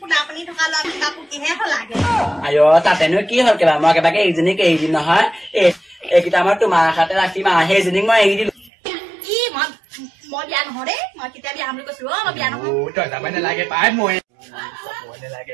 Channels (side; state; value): left; drops out; at 8.7 s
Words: পোনা পানী থকা ল'ৰা পুকিহে হলাগে তাতেনো কি হ'ল কিবা মই একেবাৰে এইজনীক এৰি দিম নহয় এইকেইটা মই তোমাৰ আশাতে ৰাখিম সেইজনীক মই এৰি দিলো কি মই বিয়া নহয় দেই মই কেতিয়া বিয়া বুলি কৈছিলো মই বিয়া নহয় তই যাব নালাগে পাই মই